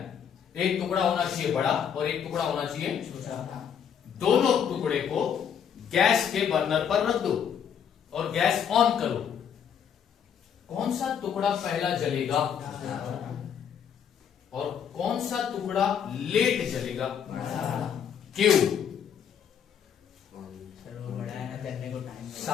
एक टुकड़ा होना चाहिए बड़ा और एक टुकड़ा होना चाहिए छोटा। दोनों टुकड़े को गैस के बर्नर पर रख दो और गैस ऑन करो। कौन सा टुकड़ा पहला जलेगा और कौन सा टुकड़ा लेट जलेगा, क्यों,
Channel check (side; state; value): right; quieter; 8.1 dB